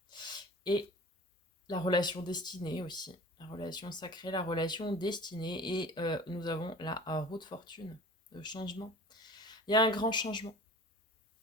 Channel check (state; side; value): normal; both; correlation 0.41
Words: Et la relation destinée aussi, la relation sacrée, la relation destinée. Et nous avons la roue de fortune, le changement. Il y a un grand changement.